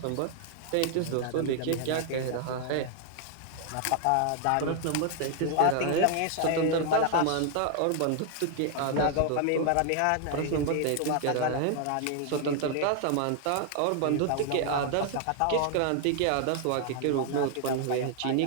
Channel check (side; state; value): both; different; correlation 0.00